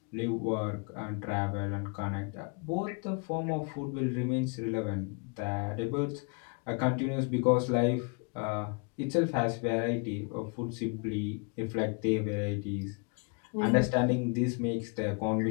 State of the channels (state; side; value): quieter; right; 35.2 dB